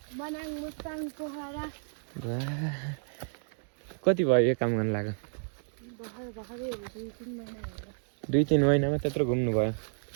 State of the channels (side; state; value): left; silent; 57 dB below the other